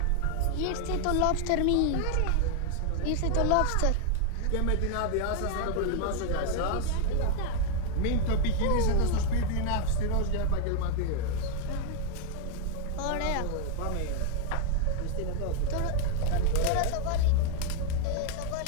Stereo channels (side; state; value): both; different; correlation 0.00